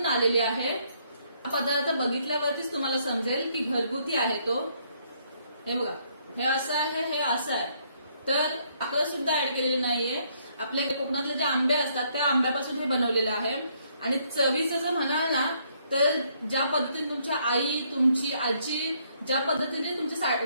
आलेली आहे. हा पदार्थ बघितल्यावरतीच तुम्हाला समजेल की घरगुती आहे तो. हे बघा, हे असं आहे, हे असं आहे. तर साखर सुद्धा ऍड केलेली नाहीये. आपल्या कोकणातले जे आंबे असतात त्या आंब्यापासून हे बनवलेलं आहे. आणि चवीचं जर म्हणाल ना तर ज्या पद्धतीने तुमच्या आई, तुमची आजी ज्या पद्धतीने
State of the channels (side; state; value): both; inverted; correlation -0.69